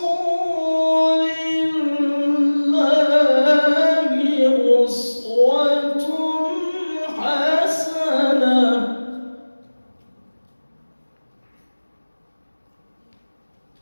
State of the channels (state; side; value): inverted; both; correlation -1.00